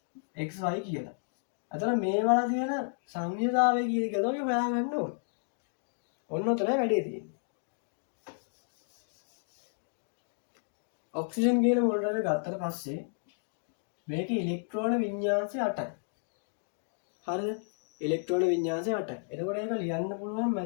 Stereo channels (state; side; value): silent; right; digital silence